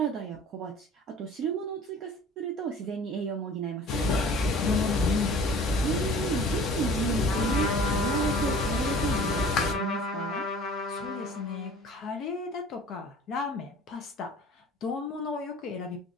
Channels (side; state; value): both; normal; correlation 0.46